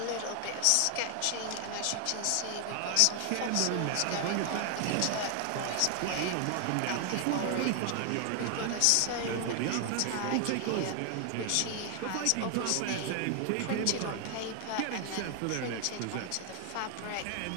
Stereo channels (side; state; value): both; different; correlation 0.00